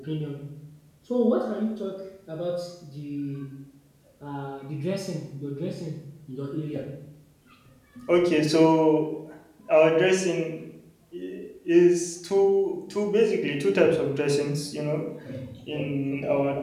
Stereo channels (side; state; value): both; identical; correlation 1.00